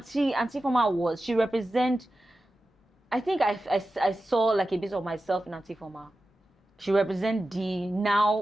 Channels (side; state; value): both; normal; correlation 0.93